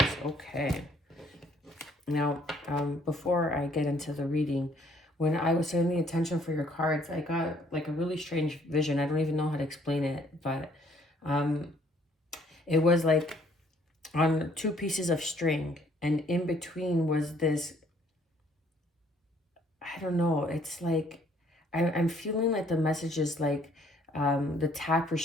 Okay. Now, before I get into the reading, when I was setting the intention for your cards, I got like a really strange vision. I don't even know how to explain it, but it was like on two pieces of string, and in between was this, I don't know, it's like I'm feeling like the message is like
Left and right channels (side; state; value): both; normal; correlation 0.62